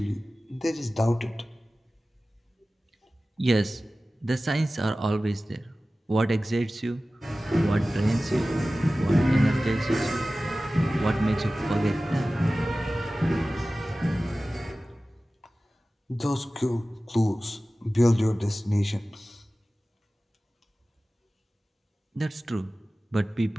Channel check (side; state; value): both; normal; correlation 0.96